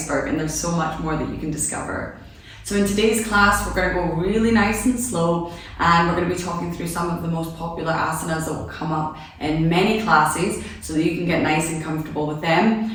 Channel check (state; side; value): identical; both; correlation 1.00